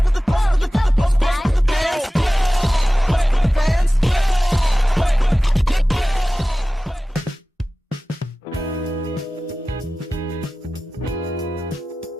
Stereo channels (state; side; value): normal; both; correlation 0.96